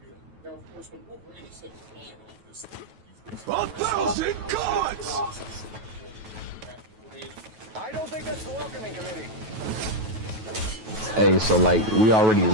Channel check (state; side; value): late; left; 9.2 ms